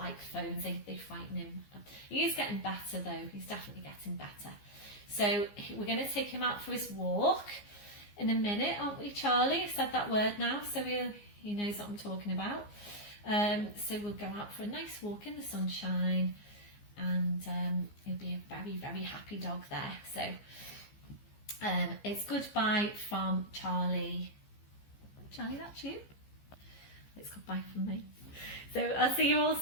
phones. They frighten him. He is getting better though. He's definitely getting better. So we're going to take him out for his walk in a minute, aren't we, Charlie? I've said that word now, so he knows what I'm talking about. So we'll go out for a nice walk in the sunshine, and he'll be a very, very happy dog there. So it's goodbye from Charlie. Charlie, that's you. it's goodbye from me. So I'll see you all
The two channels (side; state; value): right; late; 15 ms